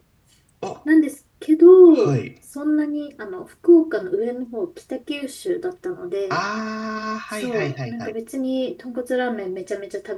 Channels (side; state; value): both; identical; correlation 1.00